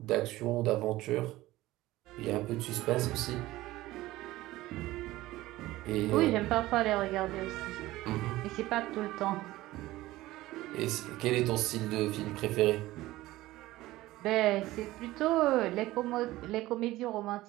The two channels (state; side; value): quieter; left; 17.3 dB